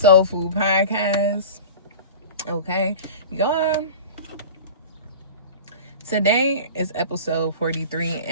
Food Podcast. Okay, y'all. Today is episode 43,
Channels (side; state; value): both; inverted; correlation -0.36